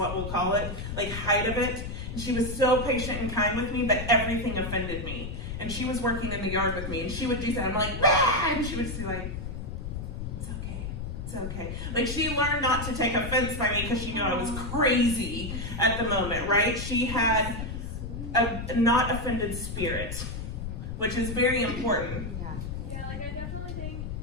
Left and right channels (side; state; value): left; noise; rumble, 6 dB below the sound